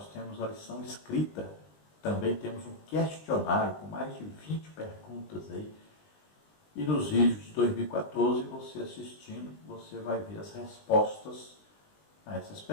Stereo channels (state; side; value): late; right; 20 ms